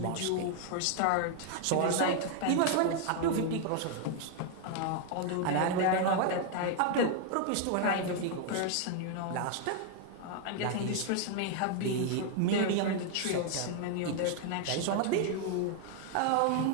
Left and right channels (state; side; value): different; both; correlation 0.00